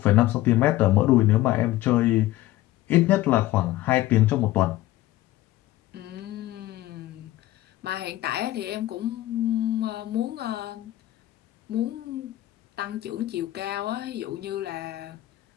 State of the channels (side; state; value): right; quieter; 15.8 dB